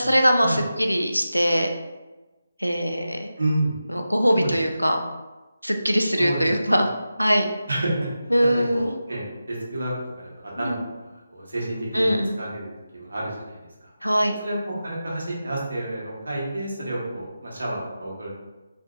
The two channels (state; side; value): inverted; both; correlation -0.92